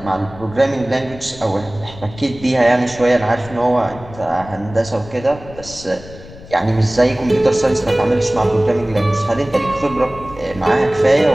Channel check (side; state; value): left; noise; rumble, 17 dB below the sound